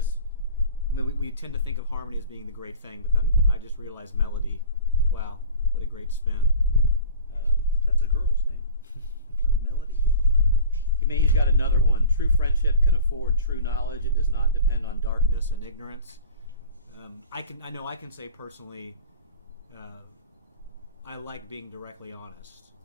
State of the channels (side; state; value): both; inverted; correlation -0.40